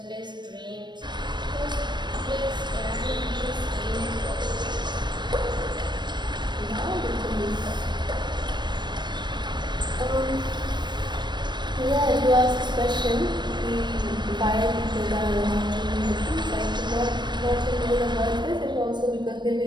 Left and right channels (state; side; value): late; left; 0.22 ms